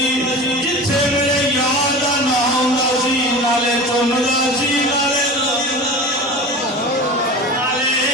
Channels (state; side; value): normal; both; correlation 0.33